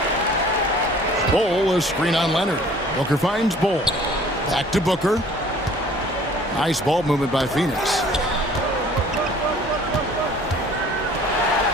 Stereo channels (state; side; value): normal; both; correlation 0.52